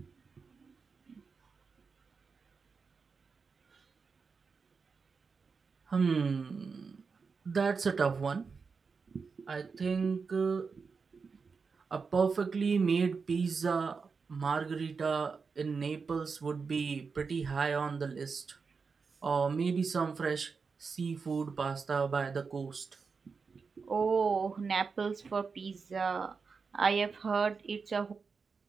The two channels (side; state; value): left; quieter; 5.1 dB